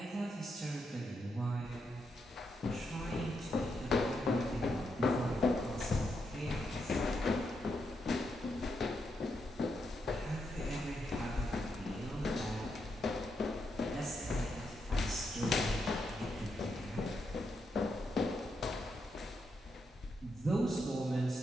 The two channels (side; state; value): both; normal; correlation 0.82